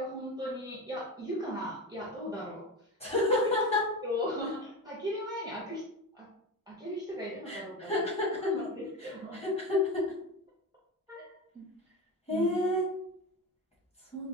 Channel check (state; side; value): normal; both; correlation 0.23